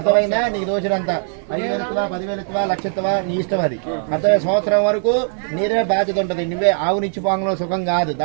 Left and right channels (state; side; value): silent; left; 66 dB below the other